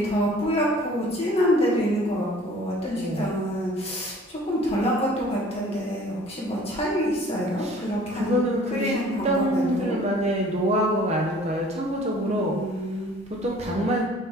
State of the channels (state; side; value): normal; both; correlation 0.51